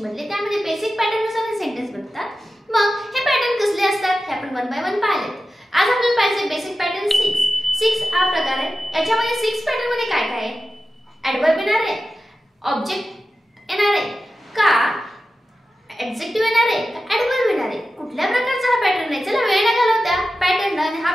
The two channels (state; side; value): normal; both; correlation 0.93